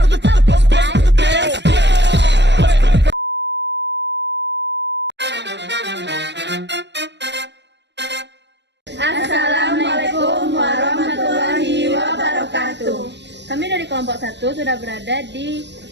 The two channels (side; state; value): left; late; 0.51 ms